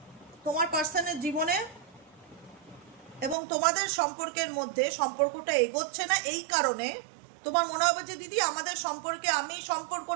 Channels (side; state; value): left; drops out; at 3.4 s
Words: তোমার পার্সনের জীবনে, এবং তোমাদের সম্পর্কের মধ্যে সম্পর্কটা এগোচ্ছে না। এই কারণে তোমার মনে হবে যে দিদি আমাদের সম্পর্কে, আমি